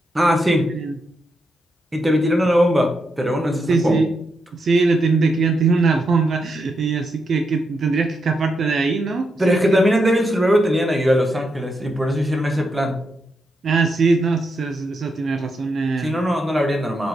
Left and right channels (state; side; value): normal; both; correlation 0.83